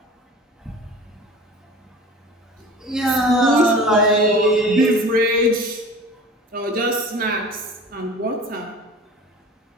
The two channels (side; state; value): both; normal; correlation 0.40